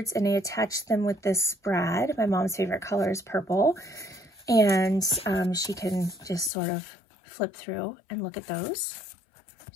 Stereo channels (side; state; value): right; drops out; at 6.5 s